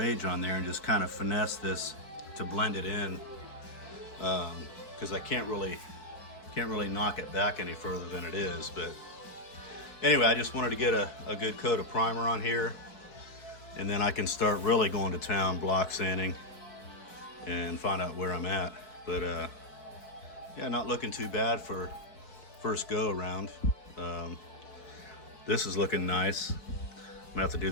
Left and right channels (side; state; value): right; late; 4.6 ms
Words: on there and just kind of finesse this to blend it in, because I can't really knock it back any further than it is. But anyway, I just wanted to get a good coat of primer on here, and then I can start really going to town block sanding and find out where I'm at. But yeah, not looking too bad for first go around. This is looking nice. I'm gonna have to do